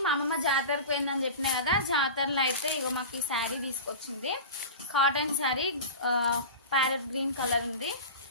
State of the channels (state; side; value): inverted; both; correlation -0.31